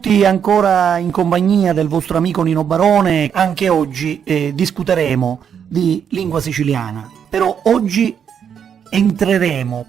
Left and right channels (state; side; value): quieter; left; 7.9 dB